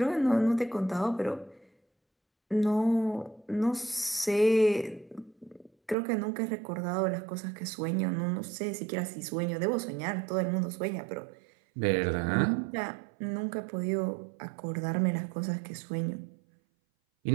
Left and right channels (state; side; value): drops out; left; at 6.0 s